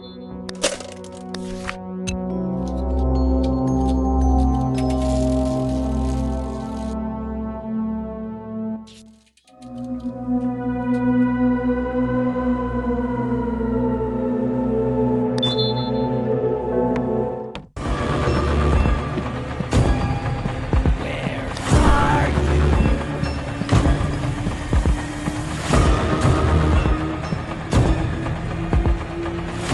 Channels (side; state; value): both; identical; correlation 1.00